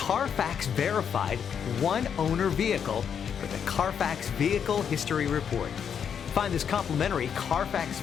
verified one-owner vehicle with the Carfax Vehicle History Report. Find this complimentary Carfax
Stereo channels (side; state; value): right; quieter; 7.7 dB